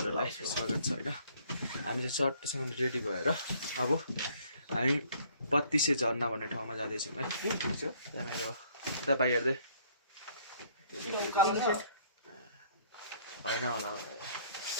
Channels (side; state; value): both; inverted; correlation -0.62